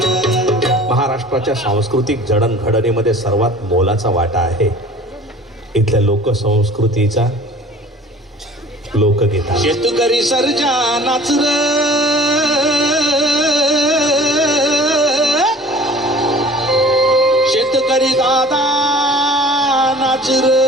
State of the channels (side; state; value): both; normal; correlation 0.46